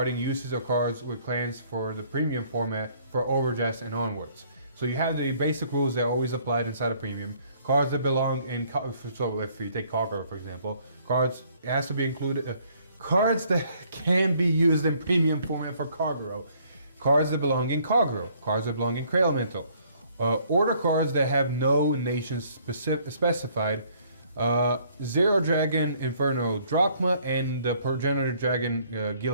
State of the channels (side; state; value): both; inverted; correlation -0.62